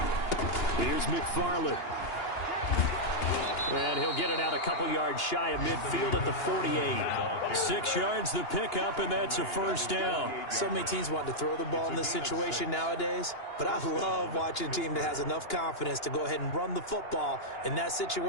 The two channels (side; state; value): right; late; 2.9 ms